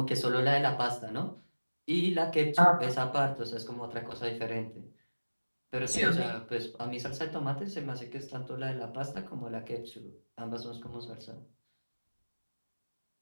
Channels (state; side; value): inverted; both; correlation -1.00